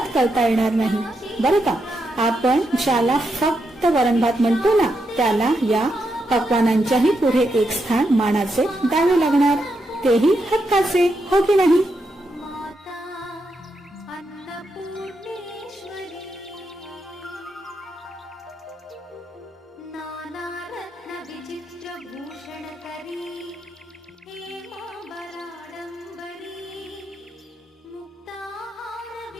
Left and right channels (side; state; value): both; normal; correlation 0.83